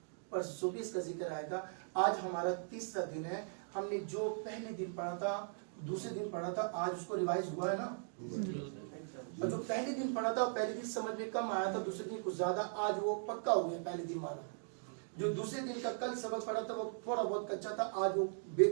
پرسوں بھی اس کا ذکر آئے گا. آج ہمارا 3را دن ہے. ہم نے جو پہلے دن پڑھا تھا, دوسرے دن پڑھا تھا, آج اس کو ریوائز ہوا ہے نا. اور جو پہلے دن پڑھا تھا پہلے دن سمجھ میں کم آیا تھا, دوسرے دن کچھ زیادہ, آج وہ پکا ہو گیا پہلے دن والا. جو دوسرے دن کا کل سبق پڑھا تھا وہ تھوڑا بہت کچا تھا, آج وہ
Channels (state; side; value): silent; left; digital silence